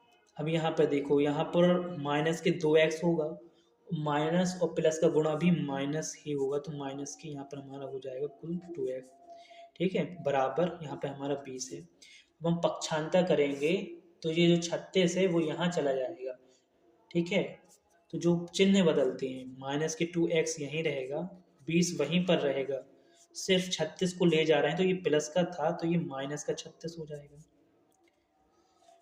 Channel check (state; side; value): identical; both; correlation 1.00